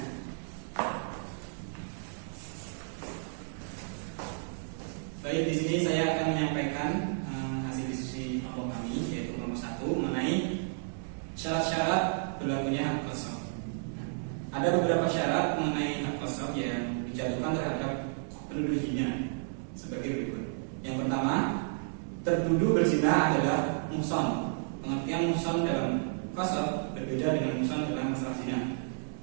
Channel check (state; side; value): silent; left; digital silence